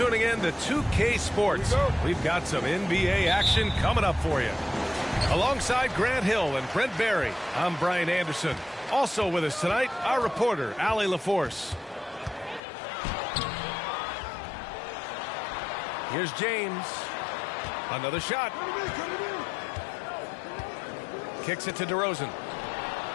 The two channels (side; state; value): right; drops out; at 12.6 s